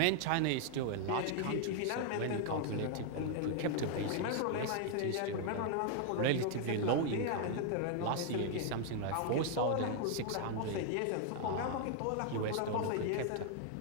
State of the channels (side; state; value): both; different; correlation 0.00